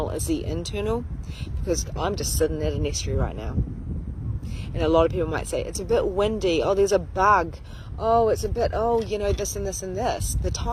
it's the internal, because I'm just sitting at an estuary right now. And a lot of people might say, it's a bit windy, oh, there's a bug, oh, it's a bit, oh, you know, this and this and this, the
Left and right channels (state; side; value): identical; both; correlation 1.00